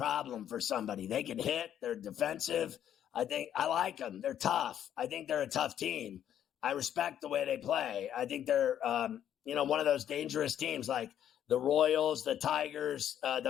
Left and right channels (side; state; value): right; quieter; 10.3 dB